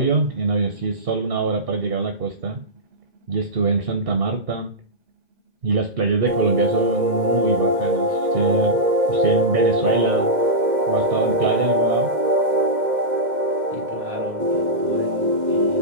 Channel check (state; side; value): late; left; 2.1 ms